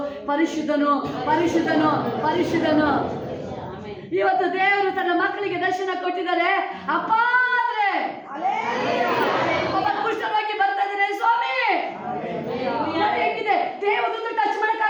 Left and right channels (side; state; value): both; identical; correlation 1.00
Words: ಪರಿಶುದ್ಧನು ಪರಿಶುದ್ಧನು ಪರಿಶುದ್ಧನು. ಇವತ್ತು ದೇವರು ತನ್ನ ಮಕ್ಕಳಿಗೆ ದರ್ಶನ ಕೊಟ್ಟಿದ್ದಾರೆ. ಅಪ್ಪ ಅಂದ್ರೆ ಕುಷ್ಠರೋಗಿ ಬರ್ತಾ ಇದ್ದಾರೆ, ಸ್ವಾಮಿ ಹೇಗಿದೆ. ದೇವದೂತ ಟಚ್